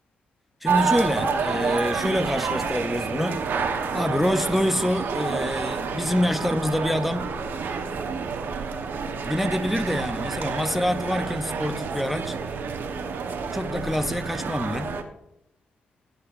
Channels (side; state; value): both; normal; correlation 0.84